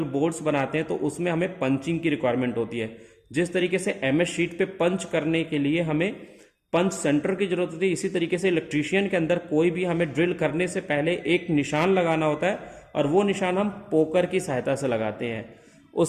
बोर्ड्स बनाते हैं, तो उसमें हमें पंचिंग की रिक्वायरमेंट होती है। जिस तरीके से एमएस शीट पे पंच करने के लिए हमें पंच सेंटर की जरूरत होती है, इसी तरीके से इलेक्ट्रीशियन के अंदर कोई भी हमें ड्रिल करने से पहले एक निशान लगाना होता है और वो निशान हम पोकर की सहायता से लगाते हैं।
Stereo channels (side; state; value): both; identical; correlation 1.00